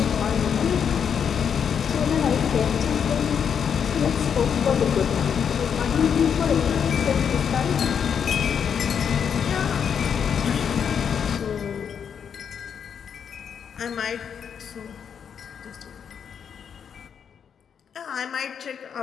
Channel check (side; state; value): right; quieter; 7.5 dB